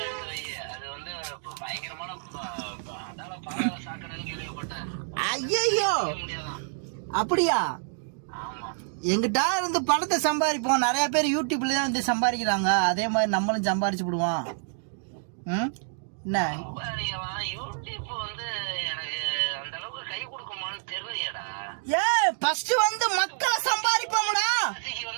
எடுத்து வை. அது வந்து பயங்கரமான அதால பாதாள சாக்கடைன்னு கேள்விப்பட்டேன். ஐயோ அப்படியா? ஆமா, எங்கிட்ட இருந்து பணத்தை சம்பாதிப்போம். நிறைய பேர் யூடியூப்ல தான் வந்து சம்பாதிக்கிறாங்க. அதே மாதிரி நம்மளும் சம்பாதிச்சு விடுவோம். என்ன யூடியூப் வந்து எனக்கு அந்த அளவுக்கு கை கொடுக்குமான்னு தெரியலையடா. ஃபர்ஸ்ட் வந்து மக்களை சம்பாதிப்போம்டா.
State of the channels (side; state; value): left; silent; digital silence